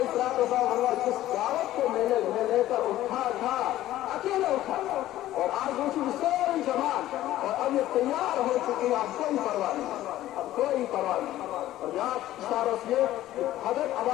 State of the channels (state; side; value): quieter; right; 14.3 dB